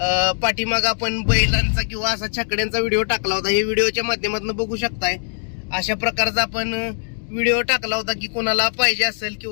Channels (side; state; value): right; silent; digital silence